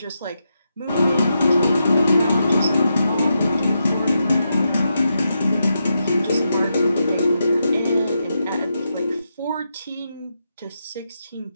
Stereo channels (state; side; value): inverted; both; correlation -0.84